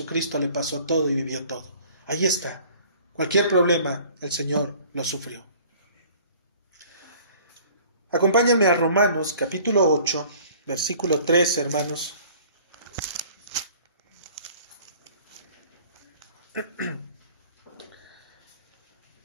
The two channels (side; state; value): both; inverted; correlation -0.51